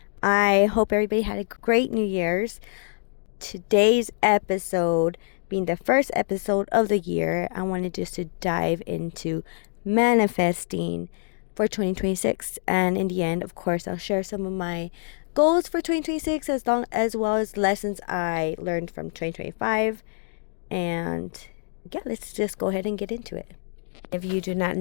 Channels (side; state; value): right; silent; digital silence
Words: I hope everybody had a great New Year's. Today's episode, being the first episode of the year, I wanted just to dive into manifesting for 2026, and in the end, of course, I'll share some of my goals for 2026 as well as lessons I learned from 2025. And yeah, let's just go ahead and get into it. If you do not